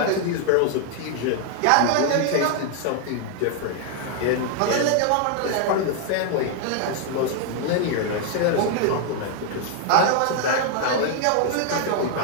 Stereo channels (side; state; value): both; different; correlation 0.00